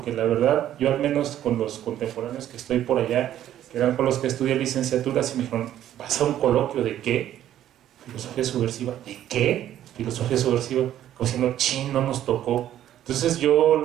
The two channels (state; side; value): quieter; left; 11.8 dB